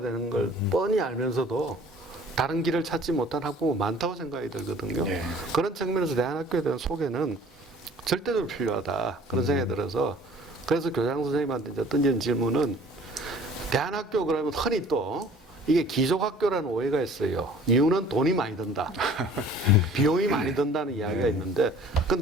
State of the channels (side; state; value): both; normal; correlation 0.51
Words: 걸 뻔히 알면서도 다른 길을 찾지 못한 학부모 많다고 생각이 들거든요. 예. 그런 측면에서 대안학교에 대한 소개는 절대적으로 필요하다. 그런 생각이 들어서, 그래서 교장 선생님한테 이제 던진 질문은, 대안학교 그러면 흔히 또 이게 기족학교라는 오해가 있어요. 이유는 돈이 많이 든다. 비용이 많이 든다는 이야기가 있는데,